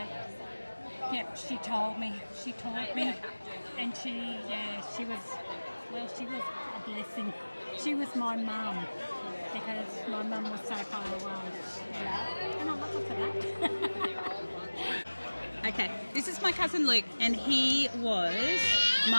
yep, she told me. She taught me. And she was a blessing. She was my mum because my mum was so far away. Yeah. And I love her for that. Okay, this is my cousin Luke, and he was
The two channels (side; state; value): both; inverted; correlation -1.00